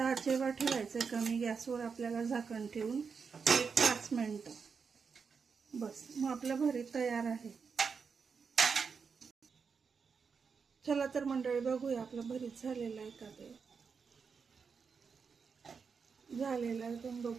ठेवायचं, कमी गॅसवर आपल्याला झाकण ठेवून 1-5 मिनिटं बस. मग आपलं भरीत तयार आहे. चला तर मंडळी बघूया आपलं भरीत झालेलं आहे का. ते झालेलं आहे, तुम्ही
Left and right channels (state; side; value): quieter; left; 5.7 dB